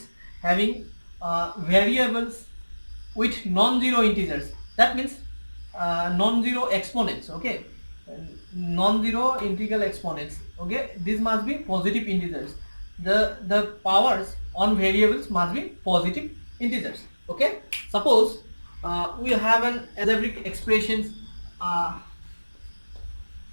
having variables with non-zero integers. That means non-zero exponents. Okay, non-zero integral exponents. Okay, these must be positive integers. The powers on variables must be positive integers. Okay, suppose we have an algebraic expressions. uh,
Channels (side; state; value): both; inverted; correlation -1.00